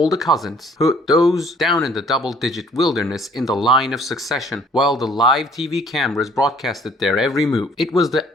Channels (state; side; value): normal; both; correlation 0.58